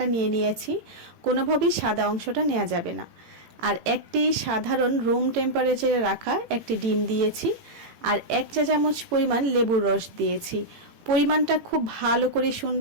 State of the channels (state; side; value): late; left; 18 ms